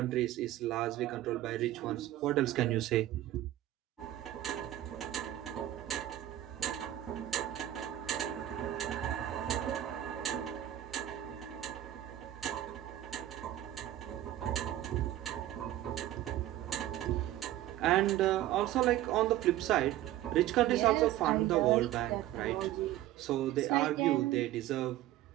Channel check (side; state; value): left; quieter; 13.7 dB